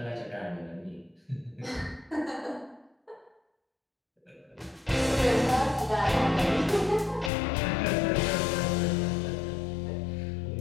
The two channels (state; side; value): drops out; right; at 7.3 s